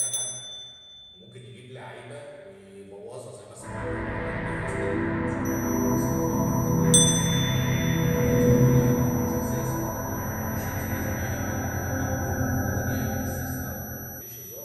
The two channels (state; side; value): identical; both; correlation 1.00